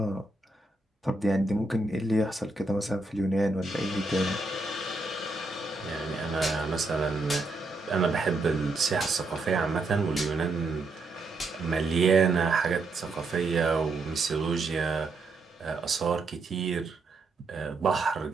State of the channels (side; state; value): left; quieter; 3.3 dB